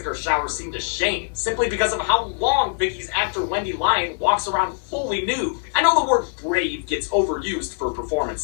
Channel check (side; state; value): right; silent; digital silence